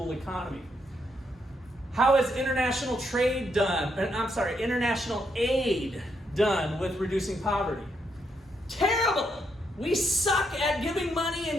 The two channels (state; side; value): normal; both; correlation 0.78